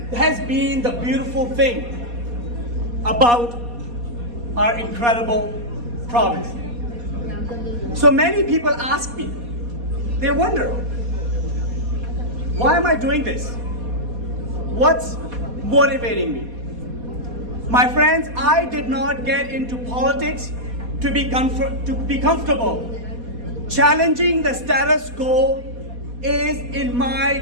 has been the beautiful thing about our incredible province. So many people ask me, they wonder, why am I doing this? What's motivating me? My friends, I did not get into politics to be comfortable. Challenging the status quo is in my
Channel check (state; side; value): late; left; 4.2 ms